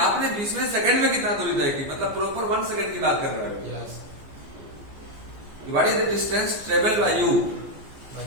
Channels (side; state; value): left; late; 14 ms